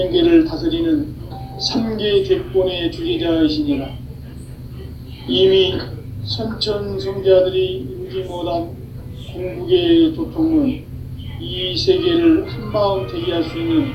다스리는 3계 대권의 주제자이시니라. 이미 선천성자들이 이루지 못한 궁극의 도통은 이 세계를 한마음 되게 할 수 있는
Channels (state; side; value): identical; both; correlation 1.00